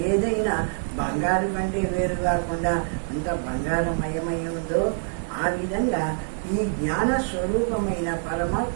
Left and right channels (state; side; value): silent; left; digital silence